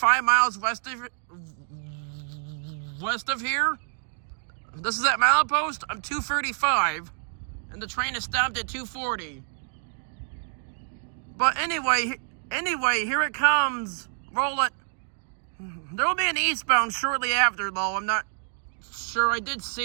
miles west of here. This is at milepost. I'm 235, and the train is stopped at 240. But anyway, here it comes. Roll it. There will be an eastbound shortly after, though. I'm not sure. I did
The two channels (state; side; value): silent; left; digital silence